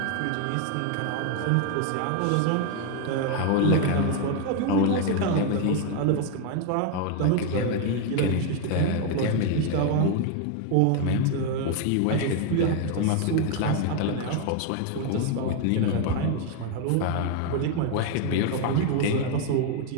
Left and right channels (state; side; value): different; both; correlation 0.01